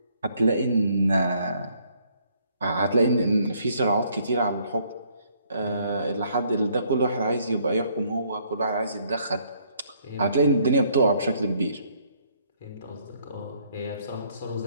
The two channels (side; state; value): both; inverted; correlation -0.66